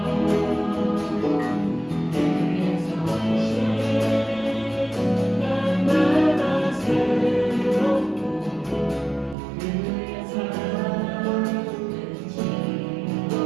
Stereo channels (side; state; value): left; drops out; at 9.3 s